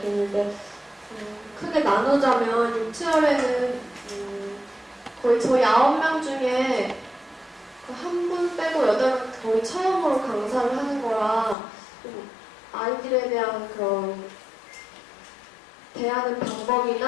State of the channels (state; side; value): drops out; right; at 11.6 s